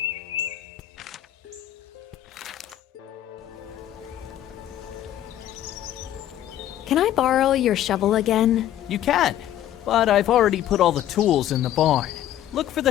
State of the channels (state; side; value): quieter; right; 12.1 dB